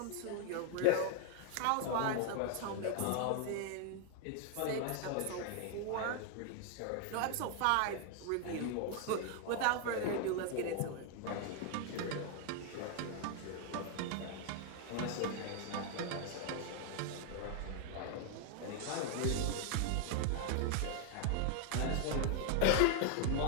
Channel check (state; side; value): different; both; correlation 0.00